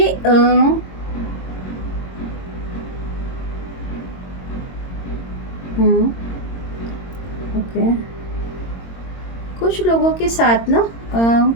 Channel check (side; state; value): right; late; 22 ms